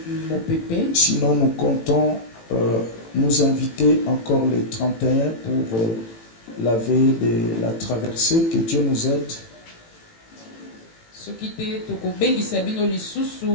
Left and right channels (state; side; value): late; right; 18 ms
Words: mopepe. Sinon, nous comptons nous inviter encore le 31 pour la veille de la traversée. Que Dieu nous aide. Soki te tokobengisa bino